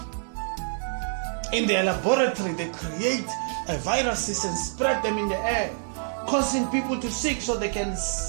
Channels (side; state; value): left; silent; digital silence